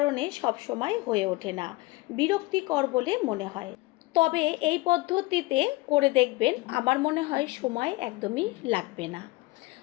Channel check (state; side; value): quieter; right; 21.4 dB